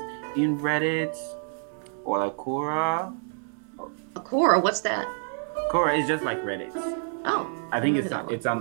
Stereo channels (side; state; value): left; silent; 60 dB below the other